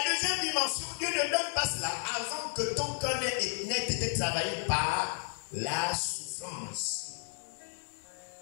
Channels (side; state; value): right; silent; digital silence